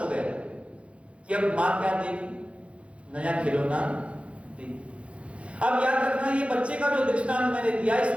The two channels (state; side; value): late; left; 0.061 ms